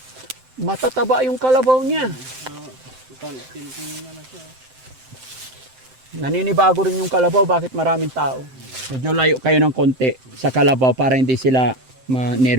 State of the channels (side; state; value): left; late; 7.7 ms